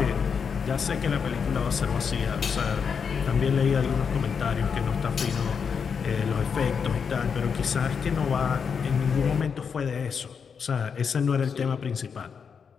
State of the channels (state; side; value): quieter; right; 6.4 dB